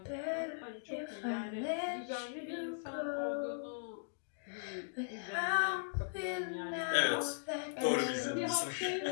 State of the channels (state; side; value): silent; right; digital silence